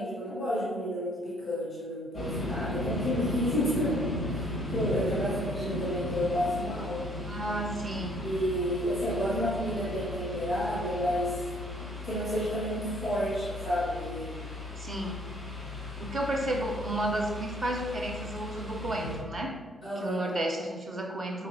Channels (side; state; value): both; normal; correlation 0.61